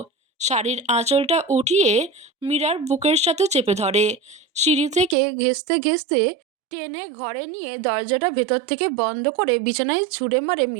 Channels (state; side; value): drops out; left; at 5.2 s